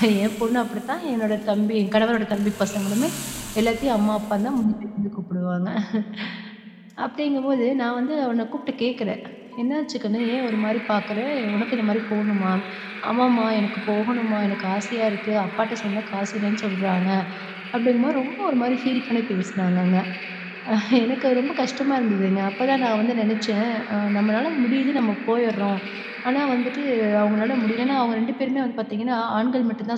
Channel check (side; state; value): both; identical; correlation 1.00